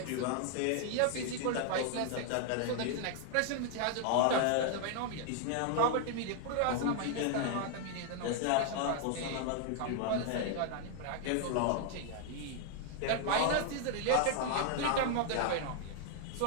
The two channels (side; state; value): both; different; correlation 0.00